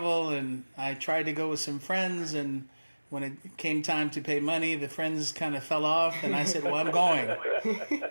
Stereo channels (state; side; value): inverted; both; correlation -1.00